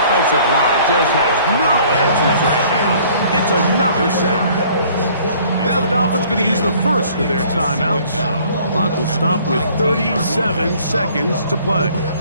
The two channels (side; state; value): both; inverted; correlation -0.55